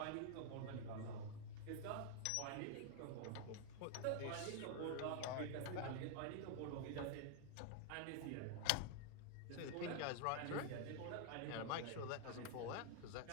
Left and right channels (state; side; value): different; both; correlation 0.00